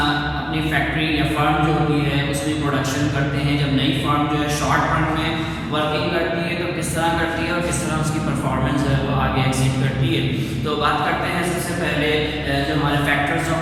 फैक्ट्री या फर्म जो होती है उसमें प्रोडक्शन करते हैं। जब नई फर्म जो है शॉर्ट रन में वर्किंग करती है तो किस तरह करती है और किस तरह उसकी परफॉर्मेंस है वो आगे एक्सीड करती है। तो बात करते हैं सबसे पहले जो हमारे फैक्टर्स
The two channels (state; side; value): identical; both; correlation 1.00